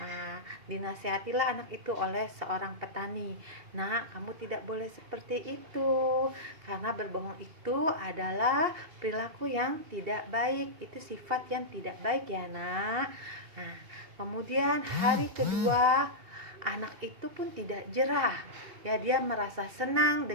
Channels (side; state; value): left; late; 2.6 ms